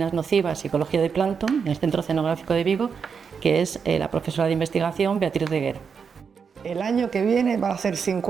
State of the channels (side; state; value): left; quieter; 6.2 dB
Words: nocivas y ecología del plancton en el Centro Oceanográfico de Vigo, que es la profesora de investigación Beatriz Reguer. El año que viene va a ser